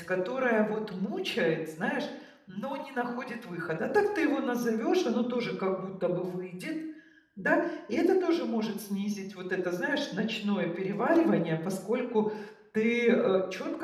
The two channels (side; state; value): both; identical; correlation 1.00